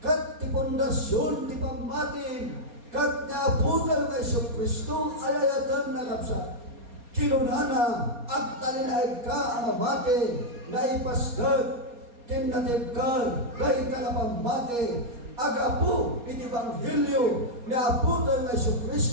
kat ti pundasyon ti pammatin kat naabutan nga Isu Kristo alayatan na kapsat kinunana at talinaid ka ang amate na ipasgat kinatibkar, dahil ka na pamati, agapu, iti Ebanghelyo, ni aputan na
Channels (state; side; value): late; left; 4.2 ms